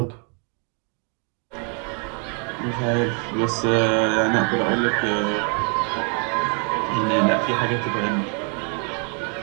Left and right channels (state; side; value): quieter; left; 39.1 dB